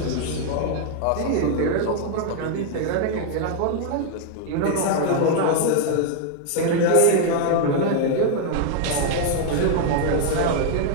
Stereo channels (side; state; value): both; different; correlation 0.00